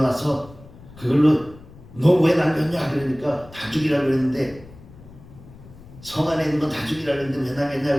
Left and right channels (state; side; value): noise; left; rumble, 20 dB below the sound